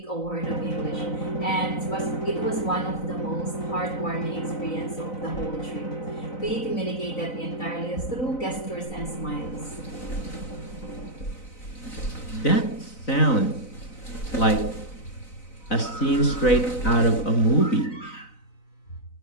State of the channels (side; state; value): right; late; 4.0 ms